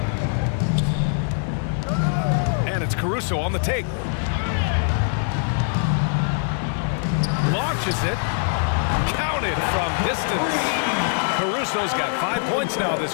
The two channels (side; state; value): right; silent; digital silence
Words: And it's Caruso on the take. Launches it. Counted from distance. Caruso's got 5 points now